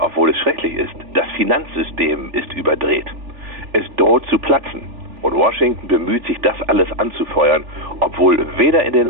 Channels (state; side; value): late; left; 3.4 ms